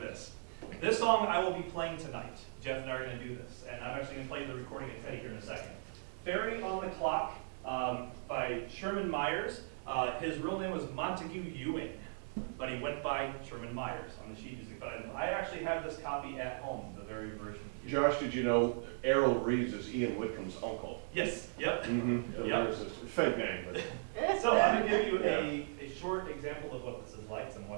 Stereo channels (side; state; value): left; silent; digital silence